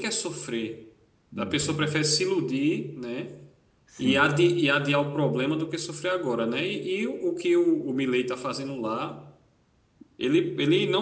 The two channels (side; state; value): both; identical; correlation 1.00